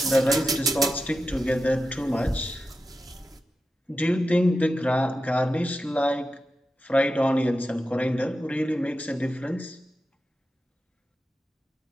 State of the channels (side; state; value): both; normal; correlation 0.91